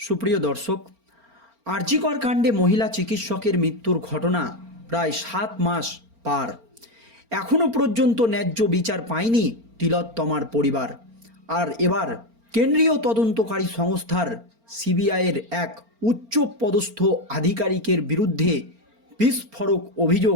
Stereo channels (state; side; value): late; left; 4.4 ms